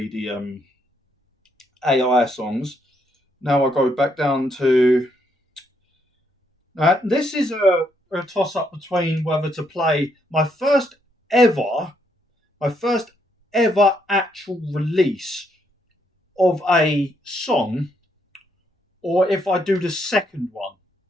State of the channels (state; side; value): normal; both; correlation 0.74